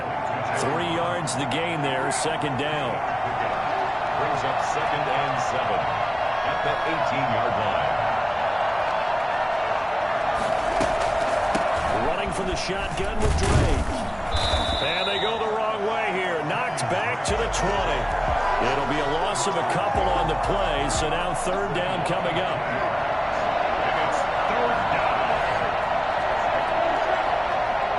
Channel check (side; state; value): both; identical; correlation 1.00